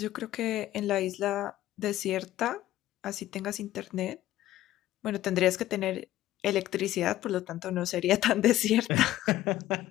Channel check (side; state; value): right; quieter; 14.4 dB